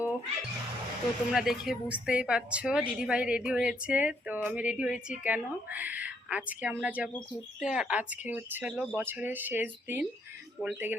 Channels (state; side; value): normal; both; correlation 0.72